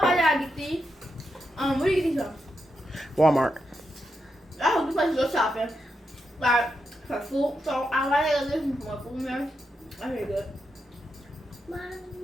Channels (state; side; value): normal; both; correlation 0.85